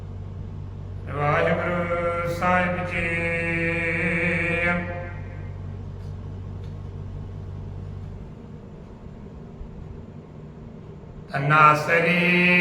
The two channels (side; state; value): both; identical; correlation 1.00